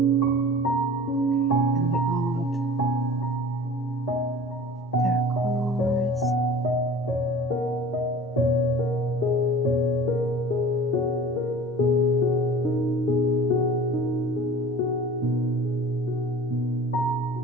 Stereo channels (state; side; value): normal; both; correlation 0.41